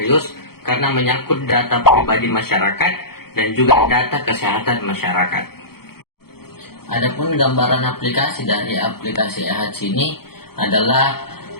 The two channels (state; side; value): late; right; 0.95 ms